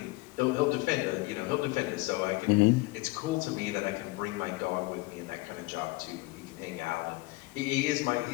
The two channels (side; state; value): right; quieter; 22.2 dB